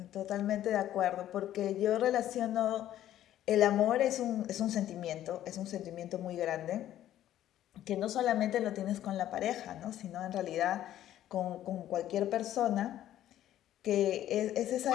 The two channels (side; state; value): right; quieter; 12.4 dB